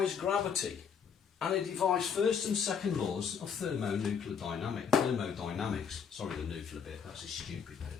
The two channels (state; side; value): quieter; right; 6.9 dB